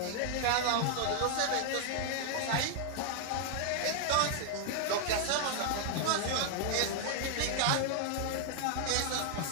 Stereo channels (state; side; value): different; both; correlation 0.00